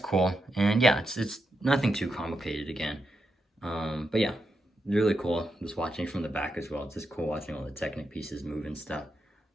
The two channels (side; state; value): both; normal; correlation 0.85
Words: cool. And yeah, it's nothing too complicated again. But yeah, really cool. Just watching from the back as well. It's just cool watching all the Technic pieces move and stuff.